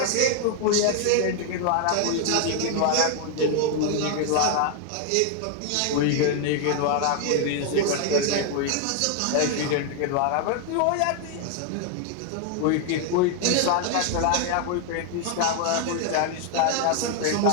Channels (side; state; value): both; different; correlation 0.00